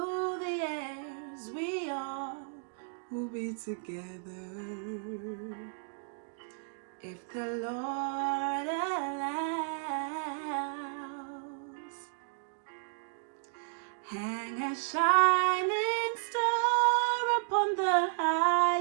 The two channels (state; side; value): silent; left; digital silence